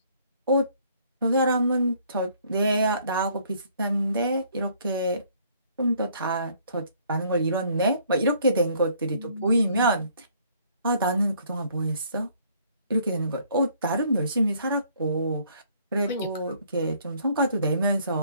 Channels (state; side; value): inverted; both; correlation -0.62